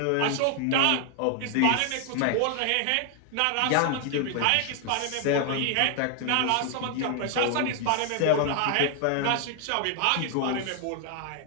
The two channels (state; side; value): different; both; correlation 0.00